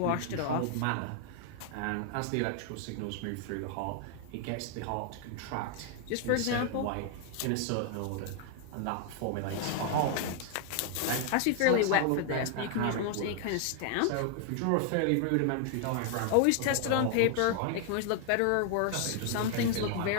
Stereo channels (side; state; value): both; different; correlation 0.00